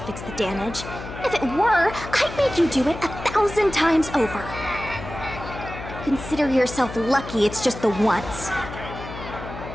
fix the damage. If it were, I'd make you do it 1,000 times over. Consider yourself lucky it's just the once.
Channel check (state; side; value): noise; left; hum, 11 dB below the sound